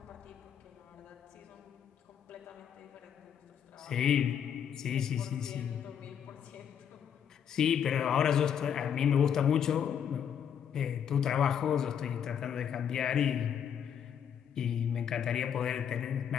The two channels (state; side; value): quieter; right; 8.4 dB